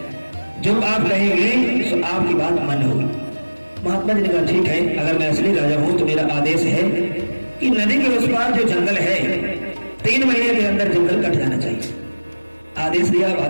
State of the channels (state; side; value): inverted; both; correlation -1.00